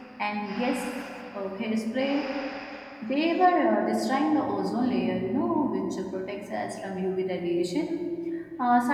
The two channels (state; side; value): identical; both; correlation 1.00